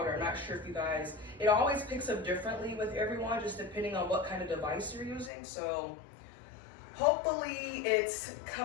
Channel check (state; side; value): drops out; right; at 5.3 s